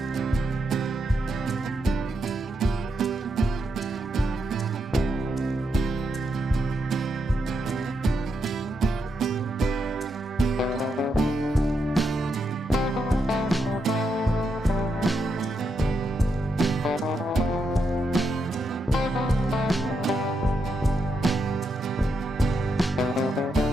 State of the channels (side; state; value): both; normal; correlation 0.82